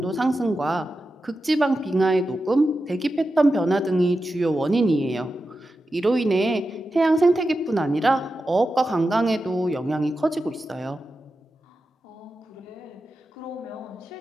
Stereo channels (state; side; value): normal; both; correlation 0.91